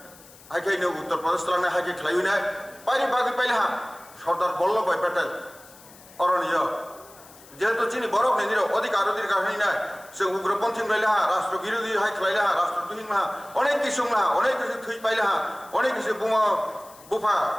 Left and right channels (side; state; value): left; noise; hiss, 22 dB below the sound